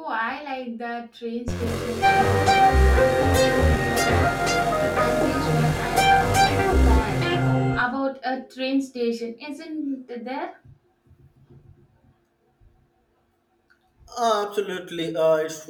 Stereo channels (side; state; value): both; identical; correlation 1.00